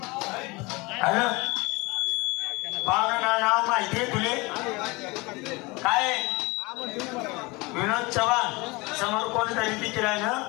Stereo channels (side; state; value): right; quieter; 25.0 dB